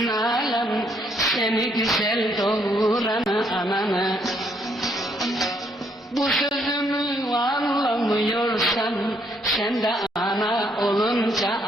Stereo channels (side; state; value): both; normal; correlation 0.71